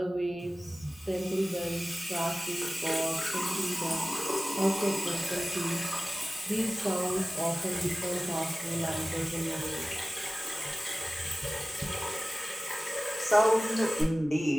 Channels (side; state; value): both; normal; correlation 0.97